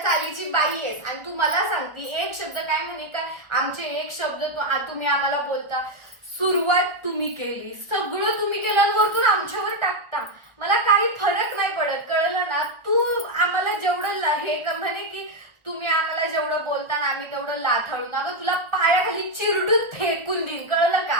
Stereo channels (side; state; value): left; late; 1.6 ms